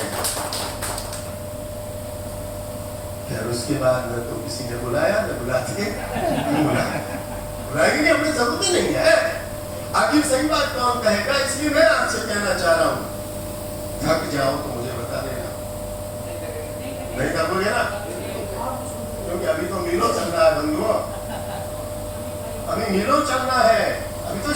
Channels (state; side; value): identical; both; correlation 1.00